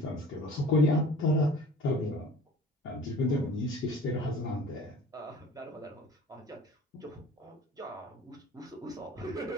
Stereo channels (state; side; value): normal; both; correlation 0.45